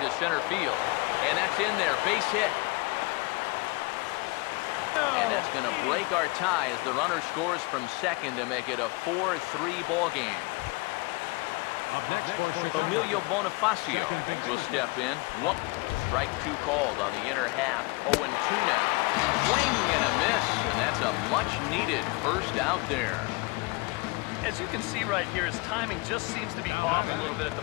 to center field. And that's in there, base hit. And that's going to break our tie as the runner scores from second to make it a 4-3 ball game. Next for Emilio Chicago. Bonifacio will step in. One strike two called on the inner half. 0-2 now. Swing and a miss, and that's a much-needed first out there. As you can see right here, his timing just seems to be off a little bit at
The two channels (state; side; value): quieter; right; 26.8 dB